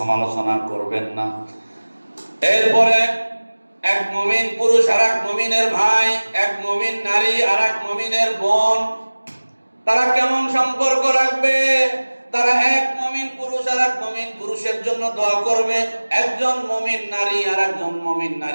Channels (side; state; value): both; inverted; correlation -1.00